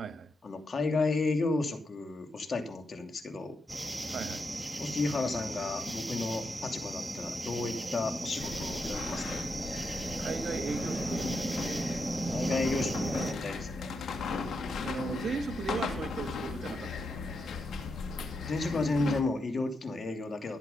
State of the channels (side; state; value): both; normal; correlation 0.84